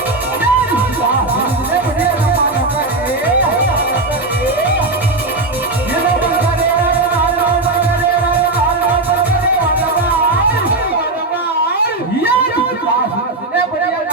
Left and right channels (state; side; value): quieter; left; 3.1 dB